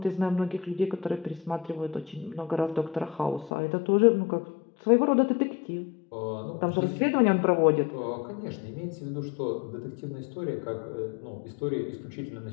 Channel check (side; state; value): right; drops out; at 3.5 s